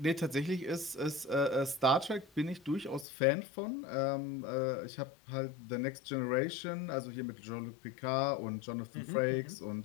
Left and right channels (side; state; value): right; drops out; at 3.1 s